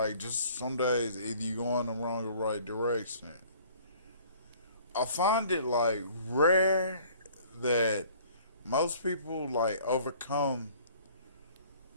just some days either you go in the wrong or right direction. I find it like rare that most people like overcome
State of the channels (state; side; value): inverted; both; correlation -0.53